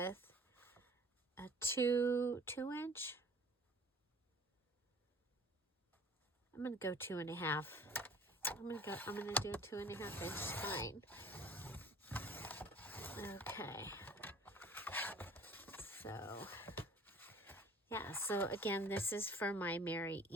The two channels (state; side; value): normal; both; correlation 0.50